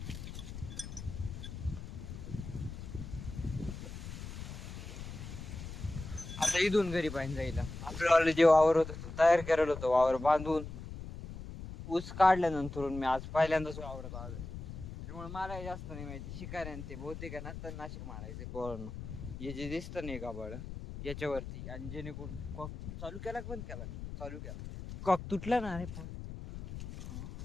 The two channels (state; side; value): noise; left; rumble, 9 dB below the sound